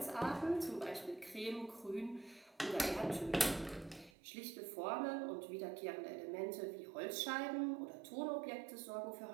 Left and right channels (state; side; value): drops out; left; at 4.1 s